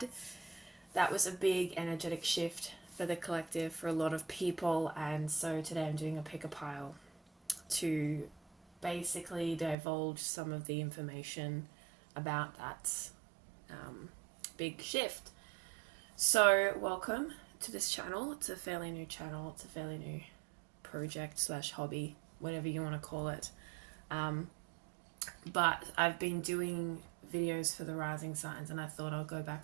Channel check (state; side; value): drops out; left; at 9.8 s